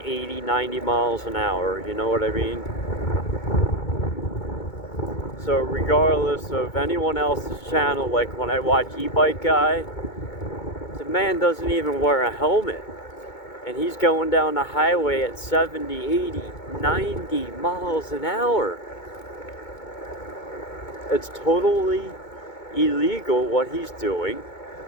90 miles an hour, you know what I mean? So regardless of anyone else's channel, like when I watch E-Bike Guy, the man doesn't even wear a helmet. And he's going down the highway at 70, 80, 90 miles an hour. It's totally illegal what he's doing.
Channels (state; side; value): late; right; 2.2 ms